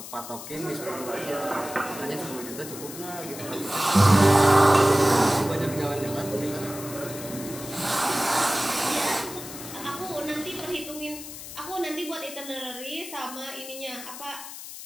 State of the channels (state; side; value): noise; left; hiss, 12 dB below the sound